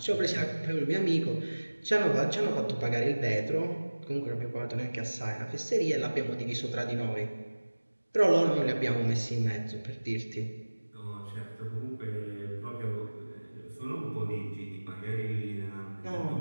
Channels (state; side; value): inverted; both; correlation -1.00